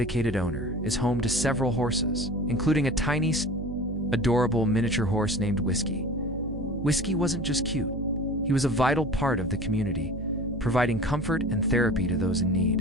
owner, is home to several horses, including a tiny, adorable miniature horse named Whiskey. Whiskey wasn't just cute. He was a vital part of the community, providing comfort and therapy to those in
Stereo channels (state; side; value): noise; right; hum, 9 dB below the sound